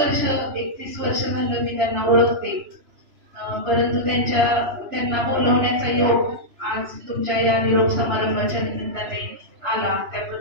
वर्ष झालं मी त्यांना ओळखते परंतु त्यांना बोलवण्याचा योग आज तुमच्या या निरोप समारंभाच्या निमित्ताने आला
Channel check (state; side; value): late; left; 3.0 ms